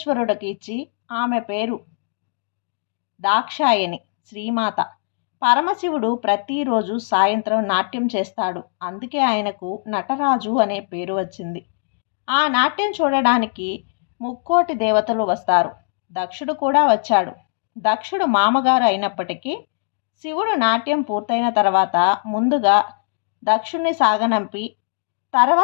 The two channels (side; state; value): right; silent; digital silence